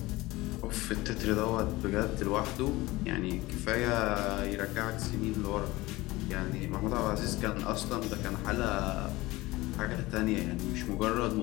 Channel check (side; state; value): right; quieter; 20.0 dB